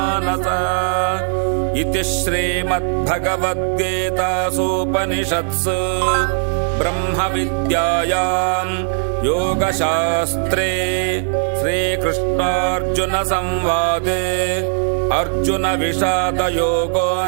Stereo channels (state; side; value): silent; left; 66 dB below the other